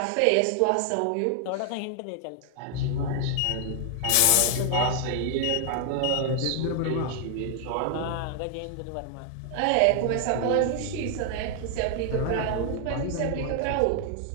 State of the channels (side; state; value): both; different; correlation 0.00